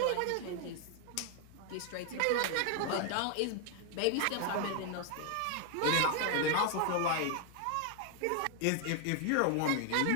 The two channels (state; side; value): different; both; correlation 0.00